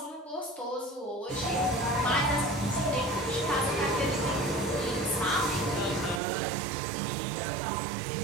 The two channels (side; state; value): left; drops out; at 6.2 s